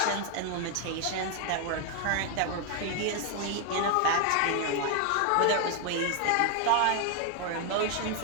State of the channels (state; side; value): different; both; correlation 0.01